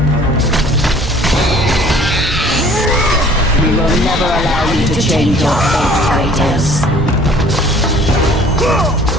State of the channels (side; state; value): both; normal; correlation 0.52